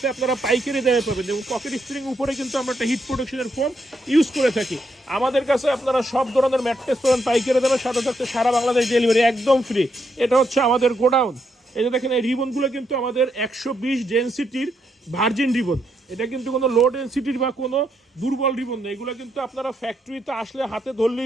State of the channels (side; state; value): both; normal; correlation 0.78